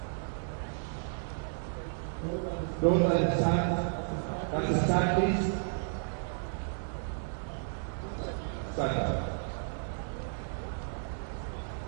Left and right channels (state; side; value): silent; left; digital silence